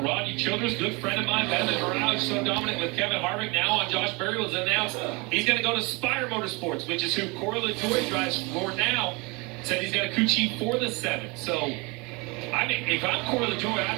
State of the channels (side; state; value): left; quieter; 27.5 dB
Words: Rodney Childress, good friend of mine, been in the garage, so dominant with Kevin Harvick. Now on Josh Berry was announced he's going to go to Spire Motorsports, which is who Corey LaJoie drives for now. Said he's got a crew chief for the 7th. So, I mean, if I'm Corey LaJoie,